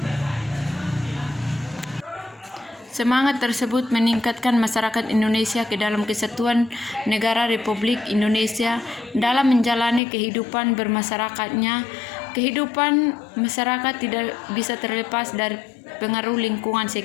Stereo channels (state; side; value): drops out; right; at 10.0 s